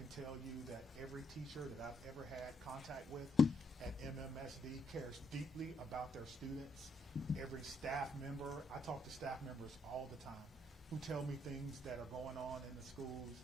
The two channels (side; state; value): both; normal; correlation 0.75